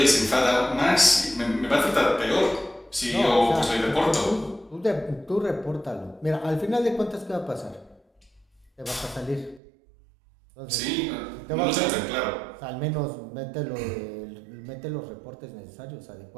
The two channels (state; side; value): drops out; left; at 9.6 s